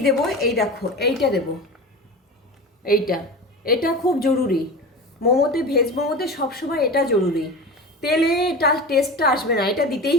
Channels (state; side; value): normal; both; correlation 0.30